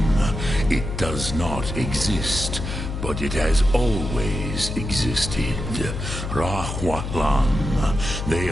It does not exist, but it has always existed. Rahwatlan. They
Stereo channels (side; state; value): left; noise; hum, 5 dB below the sound